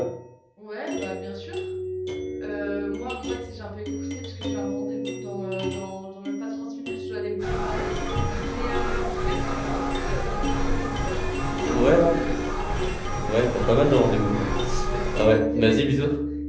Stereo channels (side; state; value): both; identical; correlation 1.00